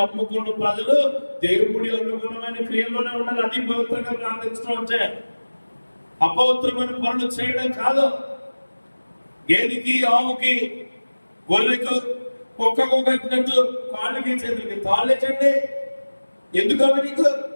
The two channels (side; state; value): both; inverted; correlation -1.00